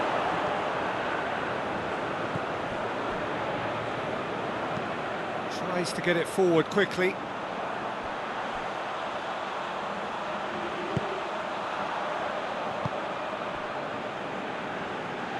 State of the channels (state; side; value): identical; both; correlation 1.00